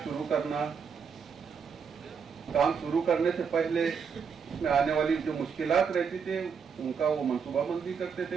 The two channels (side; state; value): left; quieter; 6.3 dB